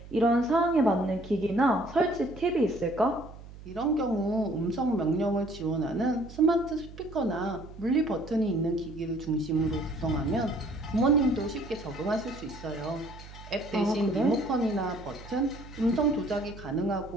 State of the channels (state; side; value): noise; right; hum, 16 dB below the sound